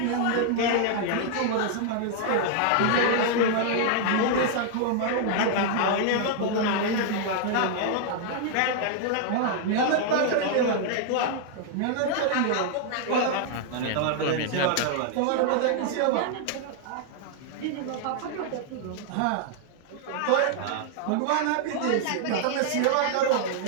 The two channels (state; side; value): different; both; correlation 0.00